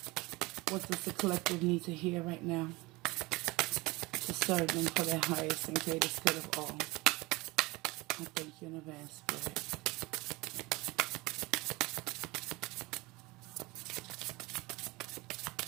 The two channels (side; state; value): left; quieter; 22.6 dB